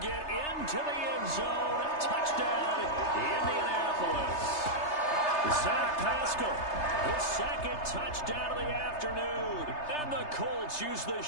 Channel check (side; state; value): right; late; 3.3 ms